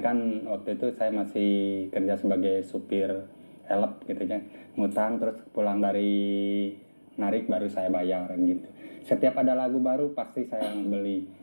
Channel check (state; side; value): inverted; both; correlation -1.00